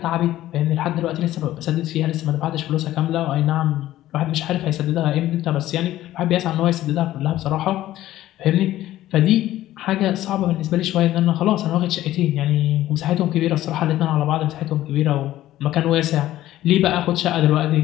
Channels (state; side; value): quieter; right; 14.3 dB